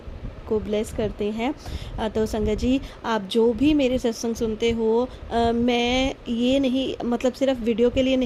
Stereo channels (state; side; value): identical; both; correlation 1.00